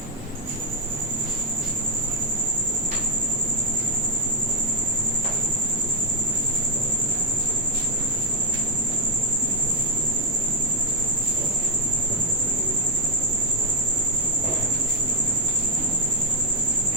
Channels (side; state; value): both; normal; correlation 0.01